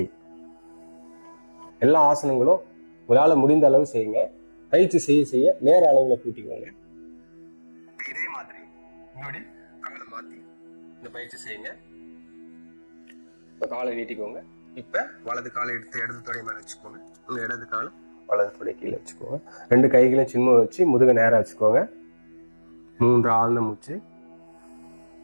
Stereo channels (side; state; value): both; inverted; correlation -1.00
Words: எல்லா ஆசனங்களும் உங்களால் முடிந்த அளவு செய்யுங்க. பயிற்சி செய்ய செய்ய நேர அளவுல கூட்டிக்கோங்க. இதே மாதிரி உங்களுடைய காலை மாத்தி இந்த பயிற்சி செய்யுங்க. இப்ப காலை நீட்டிக்கோங்க. இப்ப வலது காலை எடுத்து இடது தொடை மேல வச்சுக்கோங்க. உங்க இடது காலை வலது தொடை கீழே வச்சுக்கோங்க. 2 கைகளையும் சின்ன வச்சு முதுக நேரா வச்சுக்கோங்க. 3 ஆழ்ந்த மூச்சு.